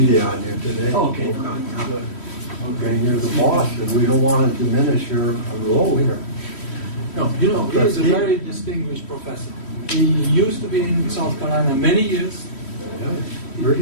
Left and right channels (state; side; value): late; right; 3.1 ms